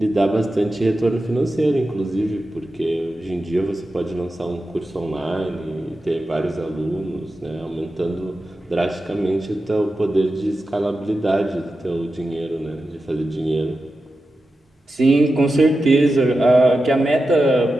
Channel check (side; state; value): both; normal; correlation 0.91